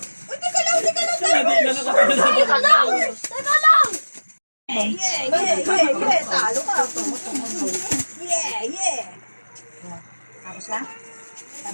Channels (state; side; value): inverted; both; correlation -1.00